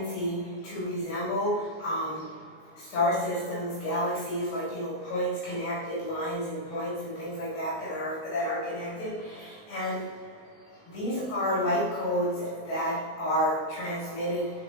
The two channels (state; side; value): late; right; 19 ms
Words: to resemble star systems, galaxies, like, you know, points connected, lines and points and things like that that are connected. And these are light codes that are transmitted